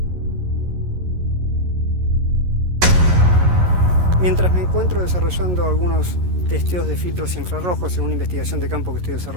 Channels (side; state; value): left; late; 11 ms